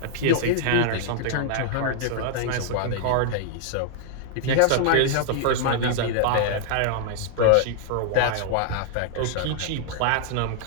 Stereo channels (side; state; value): both; different; correlation -0.01